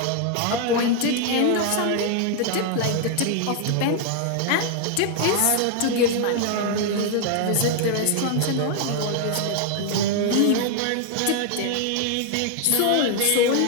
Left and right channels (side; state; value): both; different; correlation 0.00